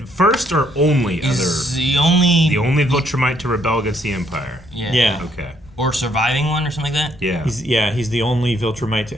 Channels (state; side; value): normal; both; correlation 0.70